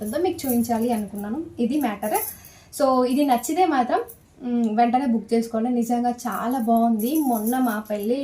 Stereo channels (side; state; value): both; identical; correlation 1.00